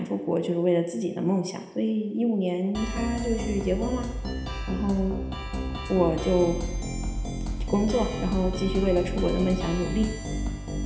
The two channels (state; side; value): identical; both; correlation 1.00